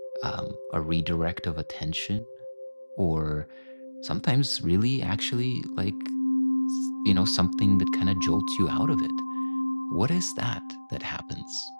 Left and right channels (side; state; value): both; inverted; correlation -1.00